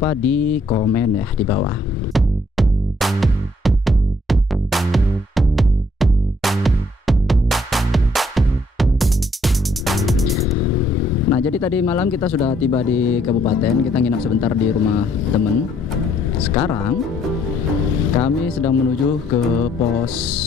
di komen ya di bawah. Nah, jadi tadi malam kita sudah tiba di kabupaten, kita nginap sebentar di rumah temen. Sekarang kami sedang menuju ke pos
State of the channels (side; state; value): both; normal; correlation 0.67